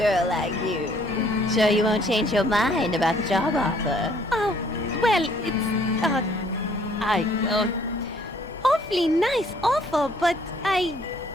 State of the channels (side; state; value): both; normal; correlation 0.62